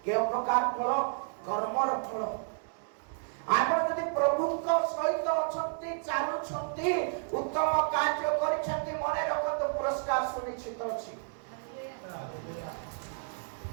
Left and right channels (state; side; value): silent; left; 57 dB below the other